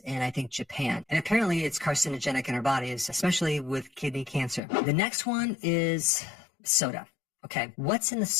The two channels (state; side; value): drops out; right; at 4.6 s